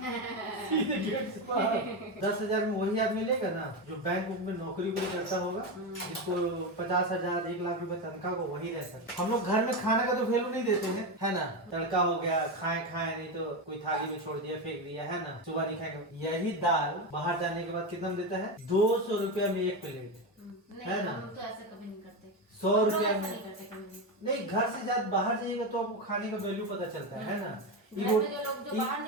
सीधे गेट से बाहर। 10,000 में वही आदमी लेगा ना जो बैंक बुक में नौकरी भी करता होगा, जिसको 50,000 1 लाख रुपए तनख्वाह को वही रहता है। हम लोग घर में खाने का तो वैल्यू नहीं देते हैं, है ना? तड़का हो गया, खाए नहीं तो कोई थाली में छोड़ दिया, फेंक दिया, है ना? सुबह नहीं खाएगा। यही दाल बाहर जाने के बाद कितना में देता है? 200 रुपया में 1 प्लेट, है ना? हम तो ऐसा कभी नहीं करते। 100 रुपया में नहीं, घर से ज्यादा बाहर जाइएगा तो आपको खाने का वैल्यू पता चलता है ना? जो लोग जो बाहर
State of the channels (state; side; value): normal; both; correlation 0.14